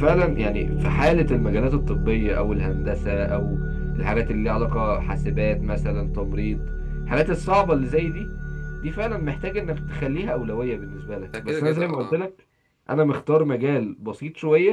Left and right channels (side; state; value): both; identical; correlation 1.00